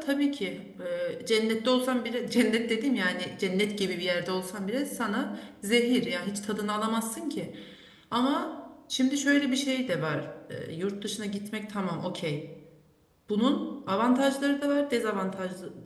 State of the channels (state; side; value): identical; both; correlation 1.00